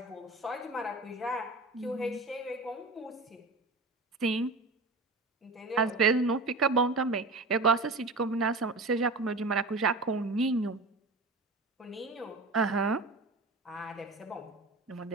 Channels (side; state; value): left; quieter; 3.2 dB